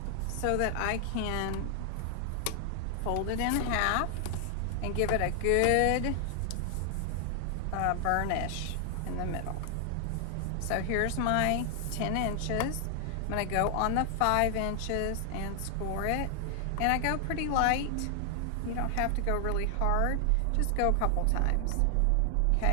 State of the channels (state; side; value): different; both; correlation 0.00